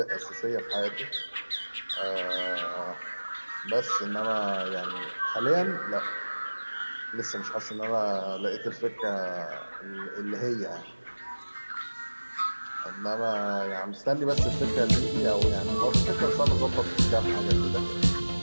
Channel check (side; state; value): both; inverted; correlation -1.00